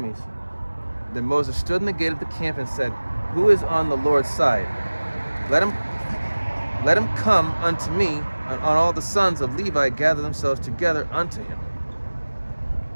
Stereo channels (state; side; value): inverted; both; correlation -1.00